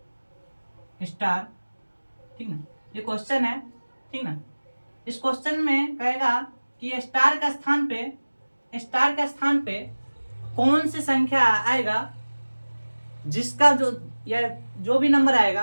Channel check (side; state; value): both; inverted; correlation -1.00